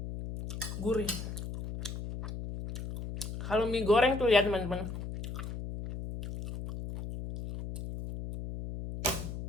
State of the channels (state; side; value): noise; left; hum, 7 dB below the sound